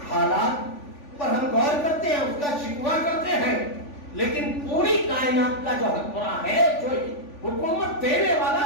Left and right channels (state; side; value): late; right; 3.5 ms